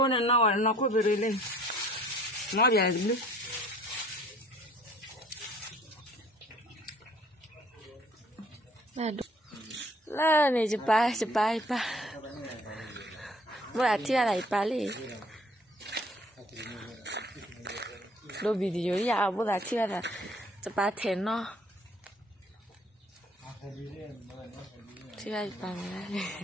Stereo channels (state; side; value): normal; both; correlation 0.56